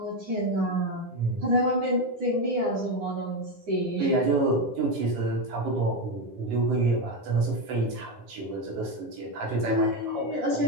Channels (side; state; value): left; late; 9.8 ms